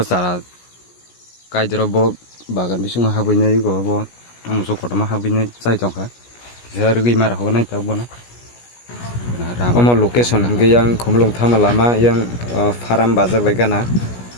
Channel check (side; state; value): right; late; 17 ms